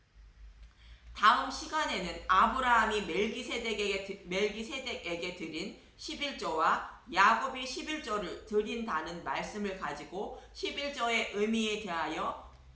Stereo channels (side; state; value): both; identical; correlation 1.00